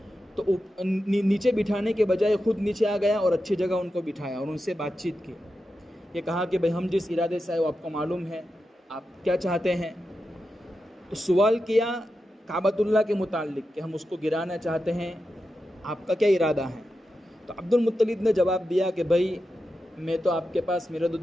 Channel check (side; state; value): both; normal; correlation 0.90